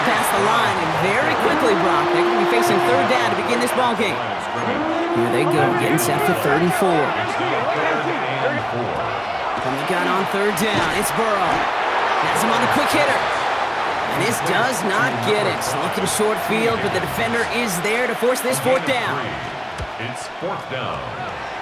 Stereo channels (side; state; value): both; identical; correlation 1.00